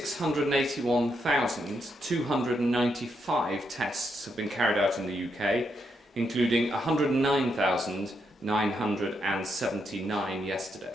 tests have been carried out in the UK, including 109,979 yesterday.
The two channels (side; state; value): both; normal; correlation 0.80